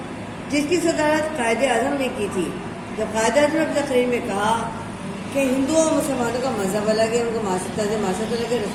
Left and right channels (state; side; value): identical; both; correlation 1.00